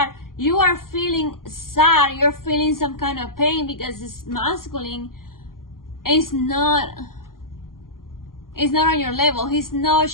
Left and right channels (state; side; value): late; right; 0.91 ms